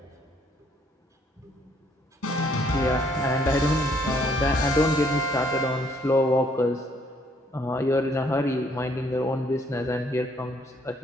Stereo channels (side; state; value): both; normal; correlation 0.66